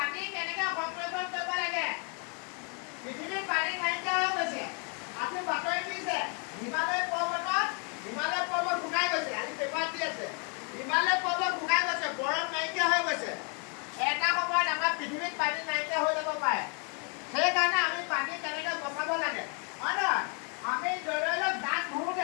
কেনেকৈ সংৰক্ষণ কৰিব লাগে পৃথিৱীত পানী নাইকিয়া হৈ গৈছে আজি বাতৰি দিছে হিমালয় পৰ্বত শুকাই গৈছে আজি পেপাৰ দি আছে হিমালয় পৰ্বত শুকাই গৈছে বৰফ নাইকিয়া হৈ গৈছে এটা সময়ত আমাৰ পৃথিৱীত পানী নাইকিয়া হৈ যাব পাৰে সেইকাৰণে আমি পানী কেনেকৈ বচাব লাগে হয় নহয় আমি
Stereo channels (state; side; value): quieter; right; 37.7 dB